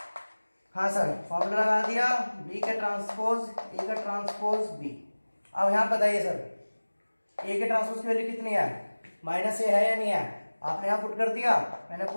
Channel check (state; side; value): inverted; both; correlation -1.00